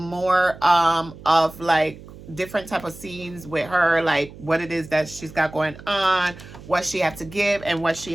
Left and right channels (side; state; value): right; noise; hum, 17 dB below the sound